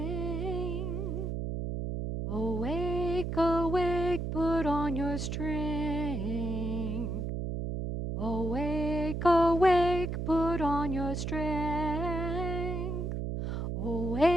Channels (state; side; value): noise; right; hum, 2 dB below the sound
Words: Awake, awake, put on your strength. Awake, awake, put on your strength.